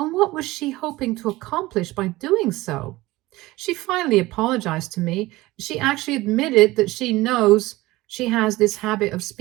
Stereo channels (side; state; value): left; quieter; 19.1 dB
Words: what was she hoping to accomplish by doing so? She finally apologized to me. She actually admitted that she knows she has this habit of